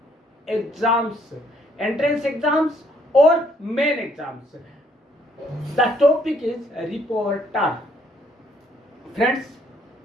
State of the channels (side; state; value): both; normal; correlation 0.67